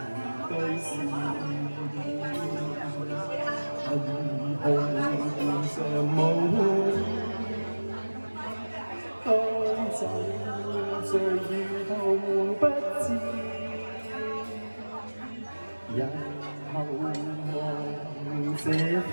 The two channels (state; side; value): inverted; both; correlation -1.00